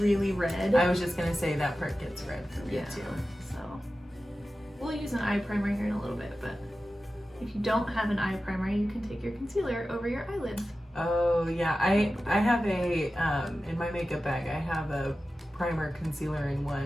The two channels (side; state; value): both; normal; correlation 0.94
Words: red. I was just gonna say that part gets red for me Yeah. too. So we'll use an eye primer here in a little bit, but if you don't have an eye primer, you can take your concealer over your eyelids. Oh yeah, I have a in my makeup bag I have a primer concealer in